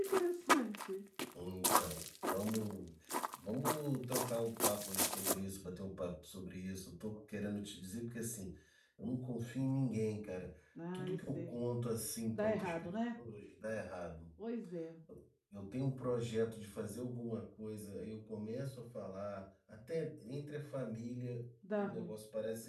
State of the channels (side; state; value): both; identical; correlation 1.00